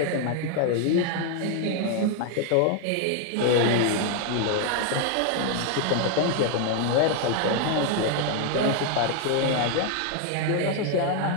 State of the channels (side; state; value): both; different; correlation 0.00